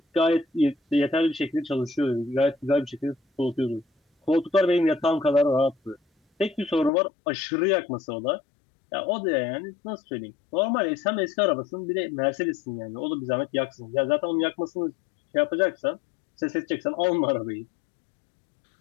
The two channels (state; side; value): drops out; right; at 6.9 s